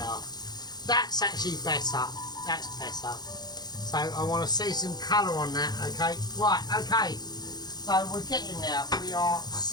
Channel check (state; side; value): late; right; 0.20 ms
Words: That's actually better. That's better. So I want to see some colour on that. Okay. Right. Okay. So we're getting there. We are